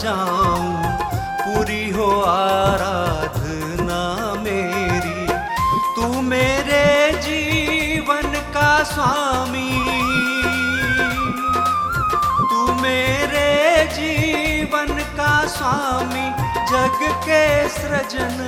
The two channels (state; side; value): identical; both; correlation 1.00